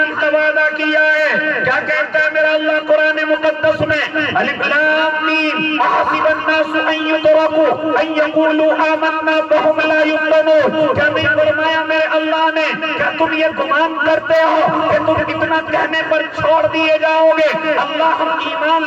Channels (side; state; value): both; identical; correlation 1.00